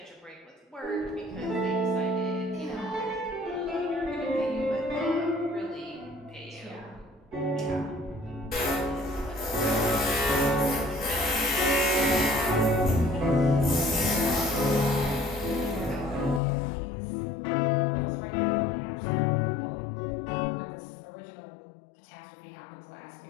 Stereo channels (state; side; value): drops out; right; at 16.4 s